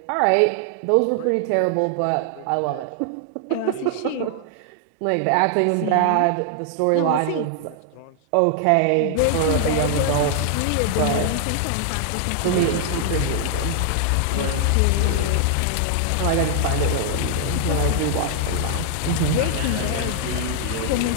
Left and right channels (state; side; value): different; both; correlation 0.00